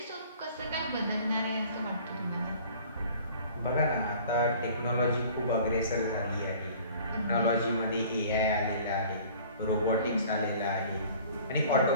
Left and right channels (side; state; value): both; inverted; correlation -0.49